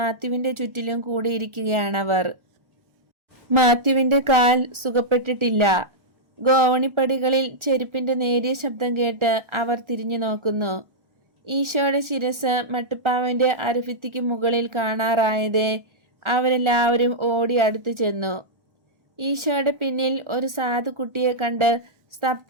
ചുറ്റിലും കൂടിയിരിക്കുകയാണവർ. മാത്യുവിന്റെ കാൽ സുഖപ്പെട്ടിട്ടില്ല. ഗോവണിപ്പടികളിൽ ചെരുപ്പിന്റെ നേരിയ ശബ്ദം കേട്ട് അവർ തിരിഞ്ഞു നോക്കുന്നു. ഈശോയുടെ ശിരസ് മട്ടുപ്പാവിന്റെ അരഭിത്തിക്ക് മുകളിൽ കാണാറായതേ അവരെല്ലാവരും ഓടി അടുത്തു ചെന്നു. ഈശോയുടെ പിന്നിൽ ഒരു സാധു കുട്ടിയെ കണ്ട്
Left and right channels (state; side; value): late; left; 1.4 ms